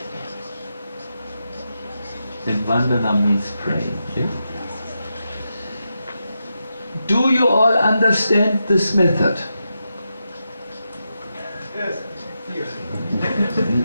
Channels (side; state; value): both; inverted; correlation -0.87